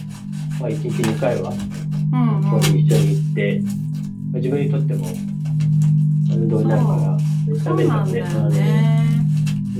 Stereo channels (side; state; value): both; identical; correlation 1.00